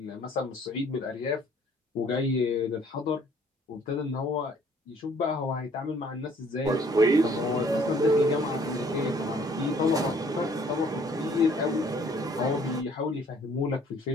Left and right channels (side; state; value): both; normal; correlation 0.59